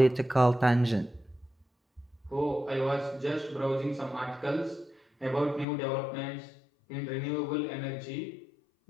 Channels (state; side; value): drops out; right; at 5.7 s